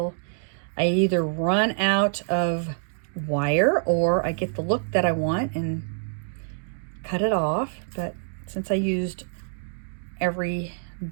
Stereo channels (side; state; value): left; silent; digital silence